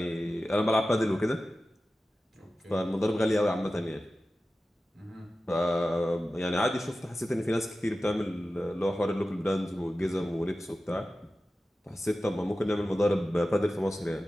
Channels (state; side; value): normal; both; correlation 0.94